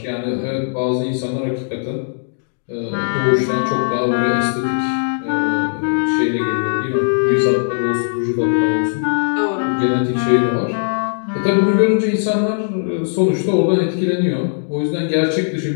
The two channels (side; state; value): right; silent; digital silence